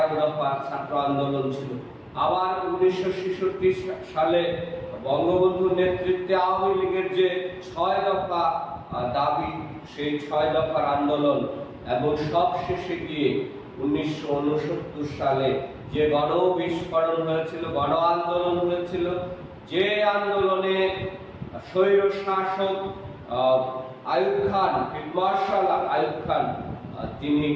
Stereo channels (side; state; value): both; identical; correlation 1.00